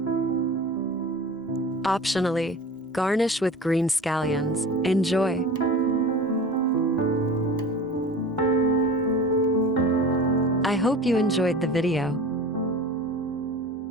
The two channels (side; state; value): both; normal; correlation 0.36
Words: Optionally, garnish with green scallions. Enjoy! I hope you enjoyed the video.